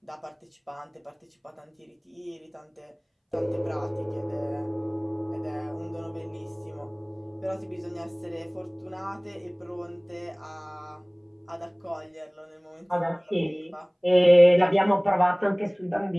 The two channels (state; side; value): identical; both; correlation 1.00